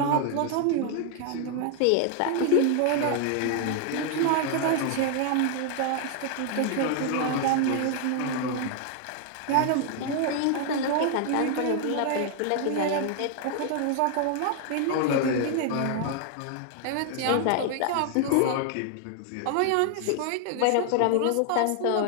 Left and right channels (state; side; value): different; both; correlation 0.00